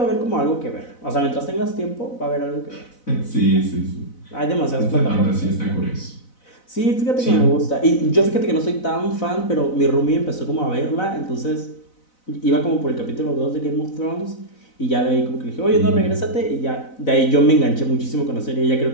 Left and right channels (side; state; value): right; late; 4.0 ms